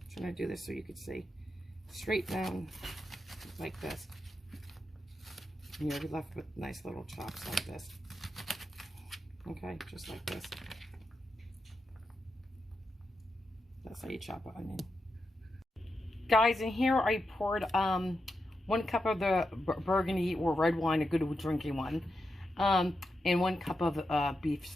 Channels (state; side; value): normal; both; correlation 0.87